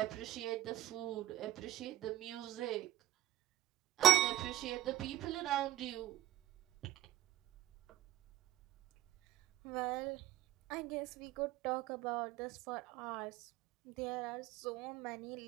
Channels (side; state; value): left; quieter; 14.1 dB